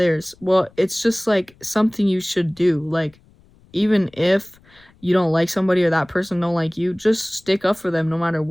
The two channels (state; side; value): noise; left; rumble, 30 dB below the sound